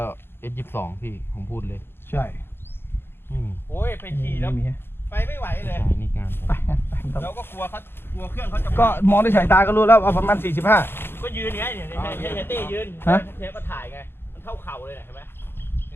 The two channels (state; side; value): late; right; 0.11 ms